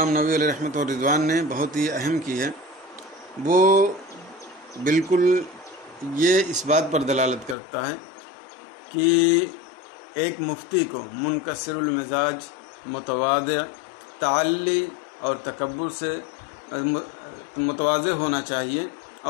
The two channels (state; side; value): drops out; right; at 7.6 s